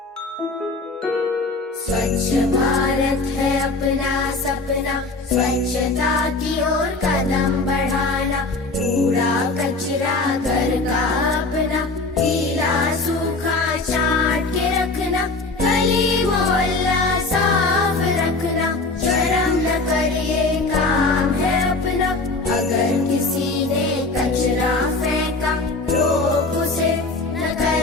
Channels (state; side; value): quieter; right; 3.5 dB